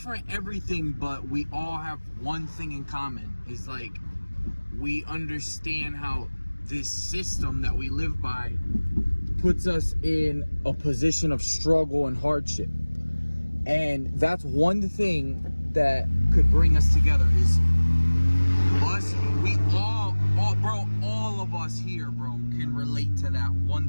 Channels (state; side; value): inverted; both; correlation -1.00